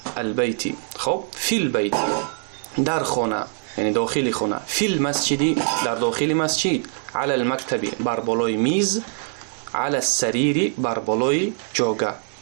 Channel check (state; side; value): silent; left; digital silence